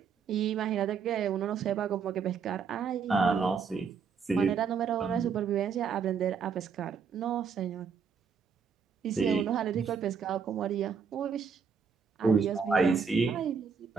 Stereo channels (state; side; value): quieter; left; 6.2 dB